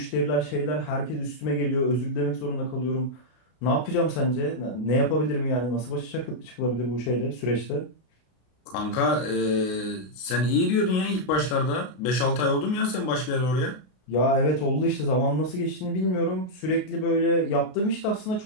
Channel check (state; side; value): late; right; 33 ms